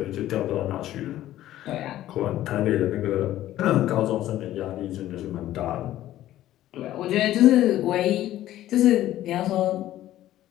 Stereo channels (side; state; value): right; quieter; 13.7 dB